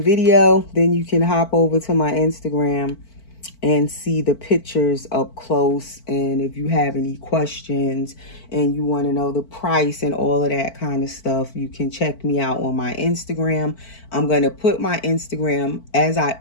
video. Then you can hop over to my Instagram and see the pictures up close. And if you have any questions and you want to know the price and all of that kind of stuff, you can check me out on my Instagram. I'm going to put my Instagram, as I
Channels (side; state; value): right; late; 4.5 ms